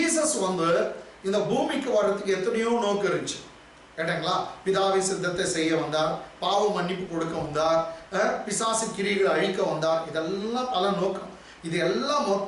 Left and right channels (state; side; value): identical; both; correlation 1.00